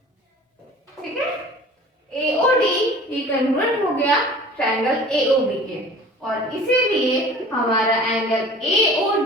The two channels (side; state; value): both; normal; correlation 0.44